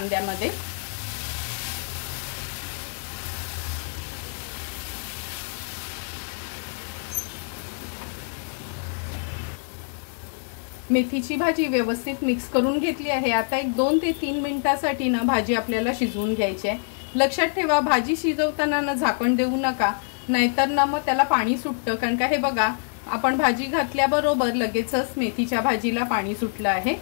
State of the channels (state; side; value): silent; right; 61 dB below the other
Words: मेथीची भाजी व्यवस्थित मिक्स करून घेतली आहे। आता एक 2 ते 3 मिनिटांसाठी ना भाजी आपल्याला शिजवून घ्यायची आहे। लक्षात ठेवा, भाजी शिजवताना ना झाकण देऊ नका, नाहीतर ना मग त्याला पाणी सुटतं। कारण का हे बघा, आपण भाजी घातल्याबरोबर लगेचच मेथीच्या भाजीला पाणी सुटलं आहे।